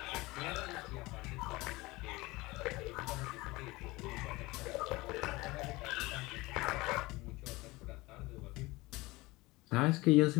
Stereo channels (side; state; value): right; quieter; 21.5 dB